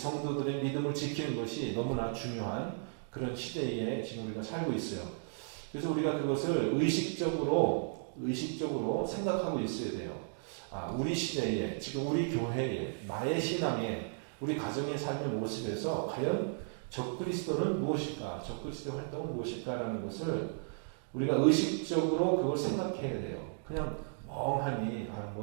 믿음을 지키는 것이 너무나 중요한 그런 시대에 지금 우리가 살고 있어요. 그래서 우리가 그것을 의식적으로 생각하고 있어야 돼요. 우리 시대에, 지금 우리 교회에, 나의 신앙에, 우리 가정의 삶의 모습에서 과연 적 그리스도는 무엇일까? 적 그리스도의 활동은 무엇일까라는 것을 우리가 의식적으로 그걸 생각해야 돼요. 그냥 멍하니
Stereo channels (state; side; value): silent; left; digital silence